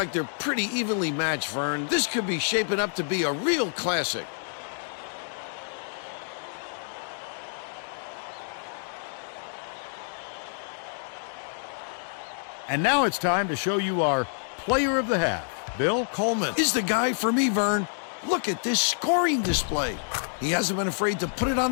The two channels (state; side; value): silent; right; digital silence